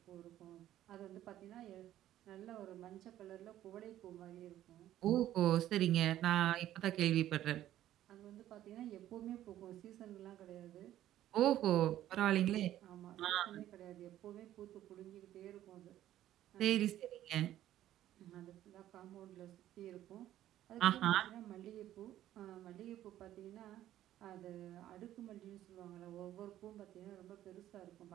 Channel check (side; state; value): left; quieter; 12.9 dB